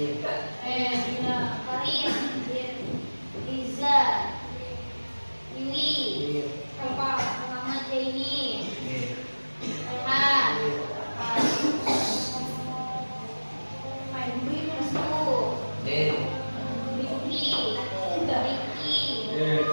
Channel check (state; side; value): inverted; both; correlation -1.00